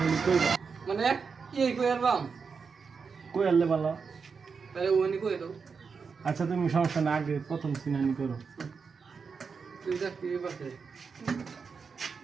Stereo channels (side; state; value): left; quieter; 5.5 dB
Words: মানে কি কই আরবাম কই আনলে ভালো তাহলে ওনি কই দাও আচ্ছা তুমি সমস্যা না আগে প্রথম সিনানি করো তুই যা কি বাসে